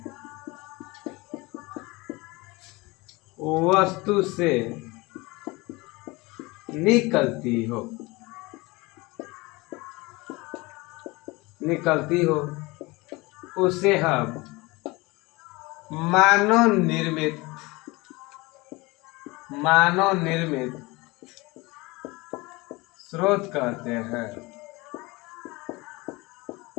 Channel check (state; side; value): quieter; right; 23.5 dB